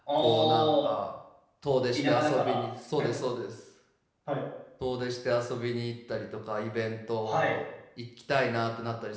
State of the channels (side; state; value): both; identical; correlation 1.00